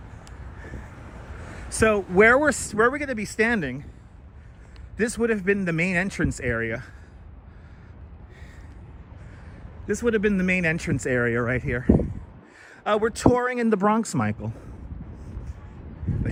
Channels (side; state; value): both; identical; correlation 1.00